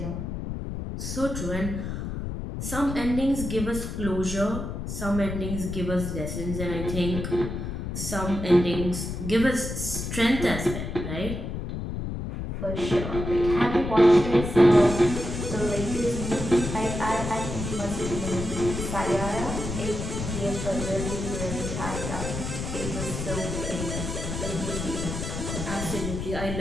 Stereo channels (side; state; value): left; noise; rumble, 5 dB below the sound